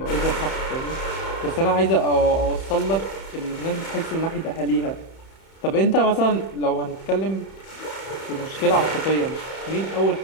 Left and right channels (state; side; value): late; right; 31 ms